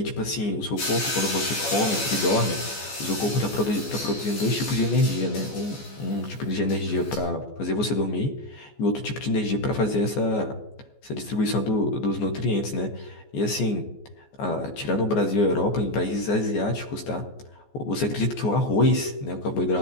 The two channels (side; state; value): right; late; 14 ms